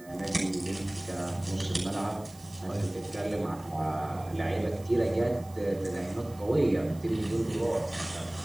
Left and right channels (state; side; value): noise; right; hiss, 23 dB below the sound